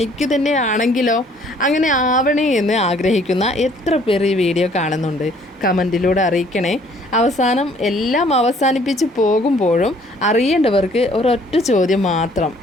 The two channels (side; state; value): both; normal; correlation 0.60